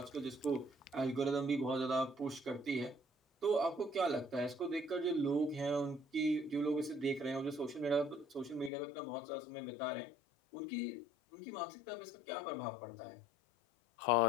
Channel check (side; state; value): right; drops out; at 8.7 s